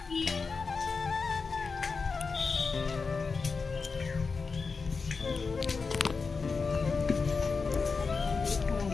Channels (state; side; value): quieter; right; 4.7 dB